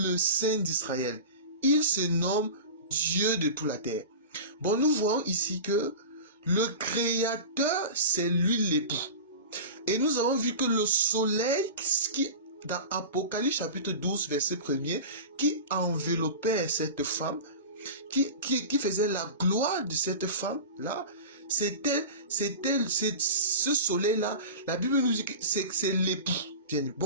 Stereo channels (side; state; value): both; inverted; correlation -0.31